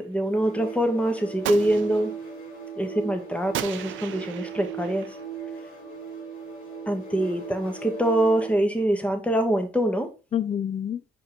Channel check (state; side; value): normal; both; correlation 0.81